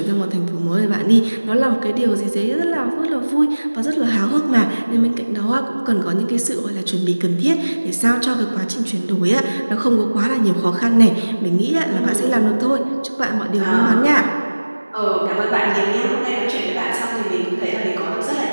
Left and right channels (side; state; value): both; inverted; correlation -1.00